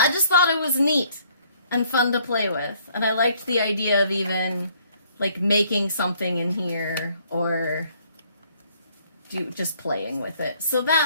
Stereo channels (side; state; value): both; inverted; correlation -0.63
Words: it was neat and fun to play with. And I liked the idea of even like making something in here or just playing with it. So